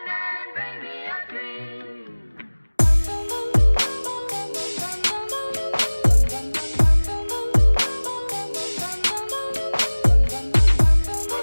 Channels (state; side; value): inverted; both; correlation -1.00